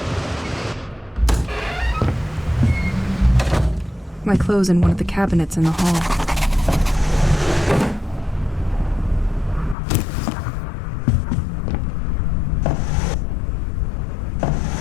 My clothes in one of the cabinets in the hall.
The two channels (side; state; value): right; drops out; at 9.8 s